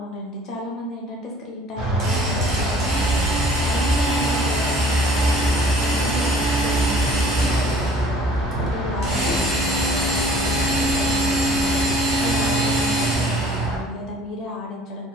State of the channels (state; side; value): normal; both; correlation 0.51